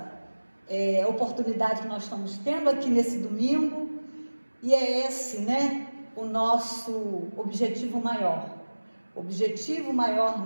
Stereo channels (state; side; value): inverted; both; correlation -1.00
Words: oportunidade que nós estamos tendo aqui nesse domingo, e é esse, né, o nosso objetivo maior. O objetivo maior